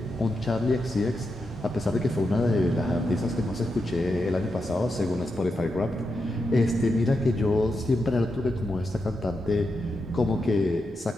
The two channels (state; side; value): normal; both; correlation 0.86